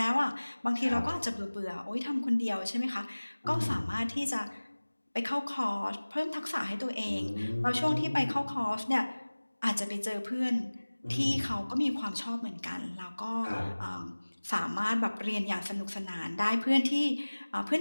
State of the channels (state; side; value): inverted; both; correlation -1.00